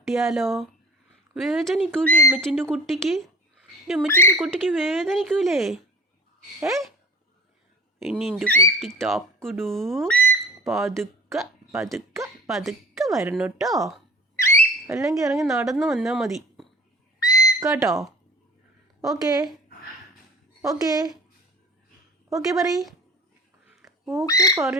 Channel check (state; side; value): normal; both; correlation 0.42